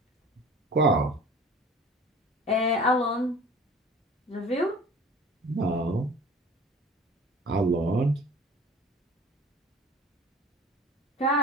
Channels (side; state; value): both; normal; correlation 0.43